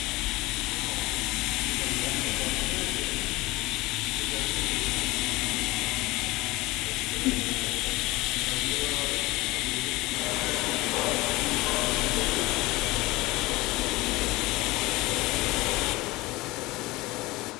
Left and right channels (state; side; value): quieter; right; 20.9 dB